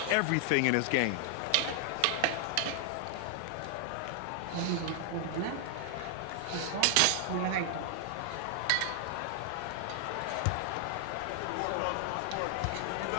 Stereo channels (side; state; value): both; different; correlation 0.00